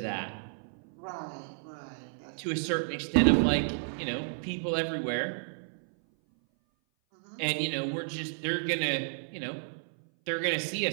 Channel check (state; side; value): silent; left; 56 dB below the other